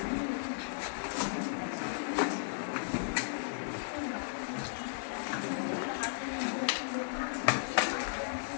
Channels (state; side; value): silent; right; digital silence